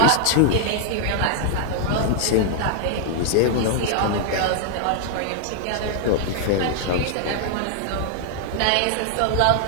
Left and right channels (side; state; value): both; different; correlation 0.00